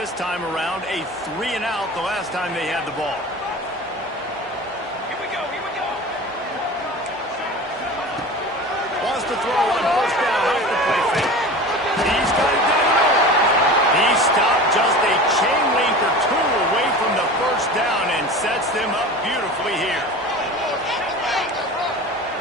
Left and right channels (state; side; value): normal; both; correlation 0.35